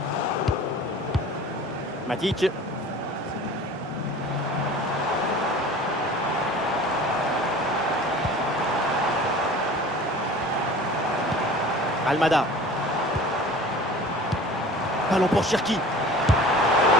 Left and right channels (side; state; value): both; normal; correlation 0.42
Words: Matic. Almada. Ballon pour Cherki.